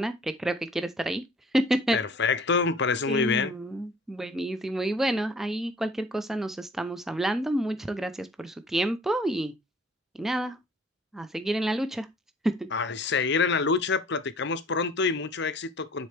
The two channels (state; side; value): normal; both; correlation 0.53